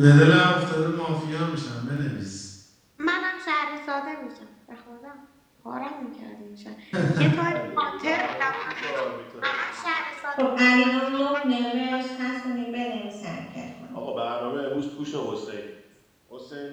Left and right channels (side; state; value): both; identical; correlation 1.00